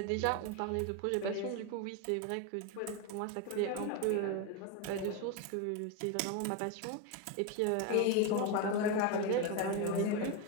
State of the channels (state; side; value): different; both; correlation 0.02